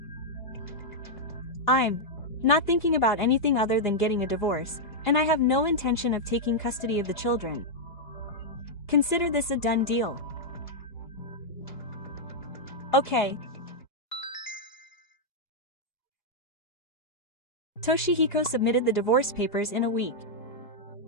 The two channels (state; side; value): late; right; 2.8 ms